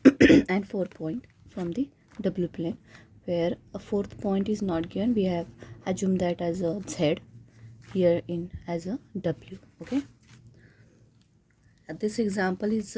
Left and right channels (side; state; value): both; identical; correlation 1.00